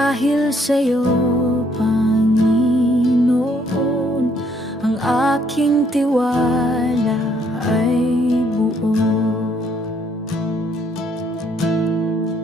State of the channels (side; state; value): both; normal; correlation 0.68